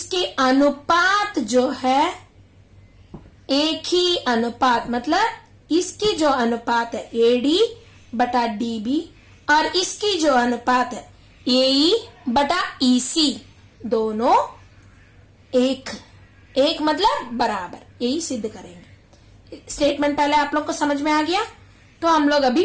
अनुपात जो है एक ही अनुपात, मतलब इसकी जो अनुपात है एडी बटा डीबी और इसकी जो अनुपात है एई बटा ईसी, दोनों एक एक मतलब बराबर, यही सिद्ध करेंगे। स्टेटमेंट पहले आप लोग को समझ में आ गया। तो हम लोग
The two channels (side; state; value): both; identical; correlation 1.00